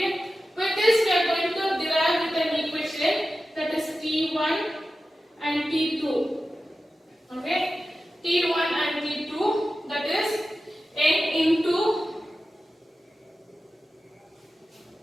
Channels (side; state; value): both; normal; correlation 0.93